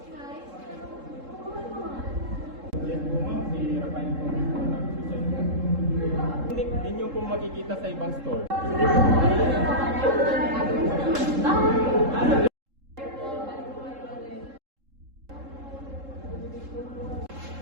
Yan po ma'am, si Rafael po dito nag-suicide. Hindi nyo po makikita sa ibang store.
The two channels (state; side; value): late; left; 3.7 ms